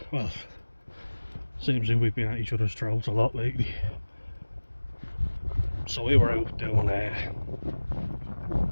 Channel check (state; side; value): inverted; both; correlation -1.00